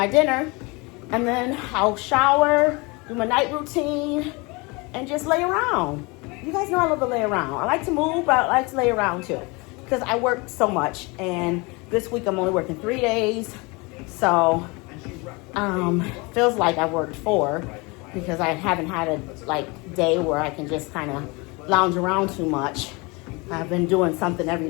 dinner. And then I'll shower, do my night routine, and just lay around. You guys know I love to lay around. I like to move, but I like to lay around too, because I work so much. And this week I'm only working 3 days. So feels like I worked 4, because I haven't had a day where I can just kind of lounge around too much. I've been doing something every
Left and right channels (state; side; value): quieter; right; 26.9 dB